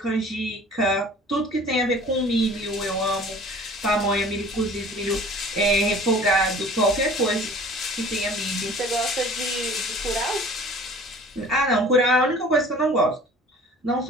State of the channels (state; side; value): normal; both; correlation 0.47